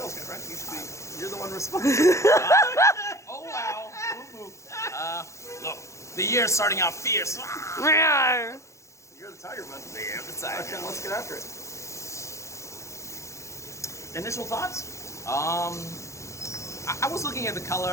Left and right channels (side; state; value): right; late; 0.14 ms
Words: guy, right? You're the one responsible. Oh wow. Look, the year's starting out fierce. You're tiger, bud. Beer of the tiger. Okay, let's get after it. Initial thoughts? I was looking at the